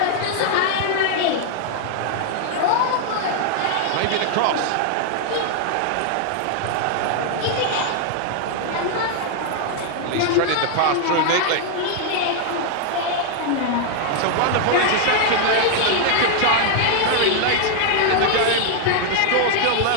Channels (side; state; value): both; different; correlation 0.00